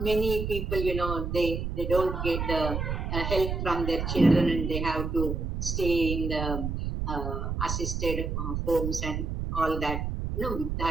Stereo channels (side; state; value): right; noise; rumble, 3 dB below the sound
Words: people, they don't get the help from their children and they have to stay in the assisted homes and all that,